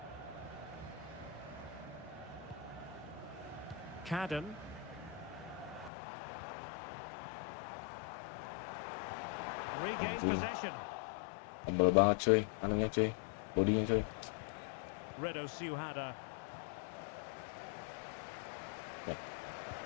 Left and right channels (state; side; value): drops out; right; at 5.9 s